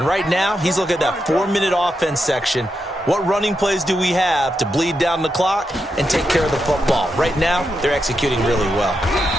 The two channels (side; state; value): both; normal; correlation 0.85